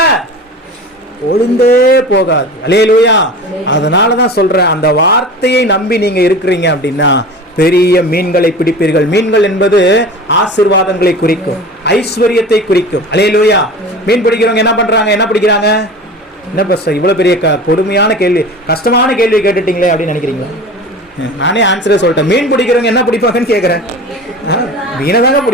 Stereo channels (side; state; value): both; normal; correlation 0.35